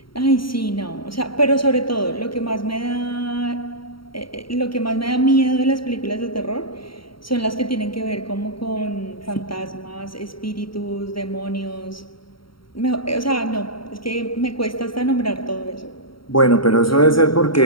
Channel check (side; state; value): right; late; 0.74 ms